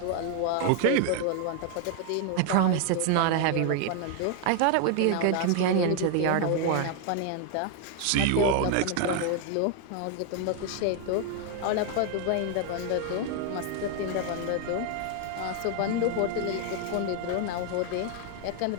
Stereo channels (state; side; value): different; both; correlation 0.00